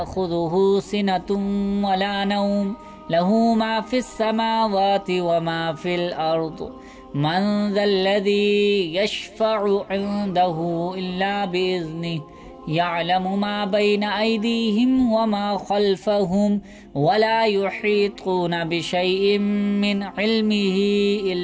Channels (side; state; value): both; identical; correlation 1.00